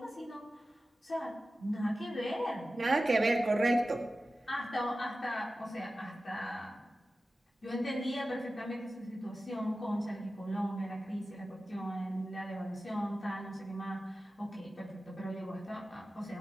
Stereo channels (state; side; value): normal; both; correlation 0.94